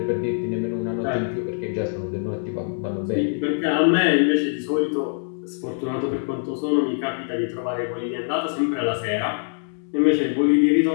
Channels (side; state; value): right; silent; digital silence